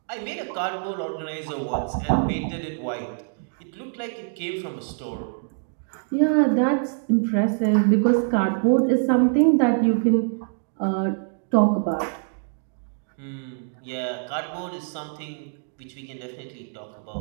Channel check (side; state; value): left; silent; 62 dB below the other